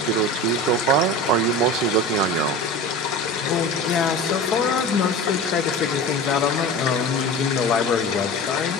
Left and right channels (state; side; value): normal; both; correlation 0.32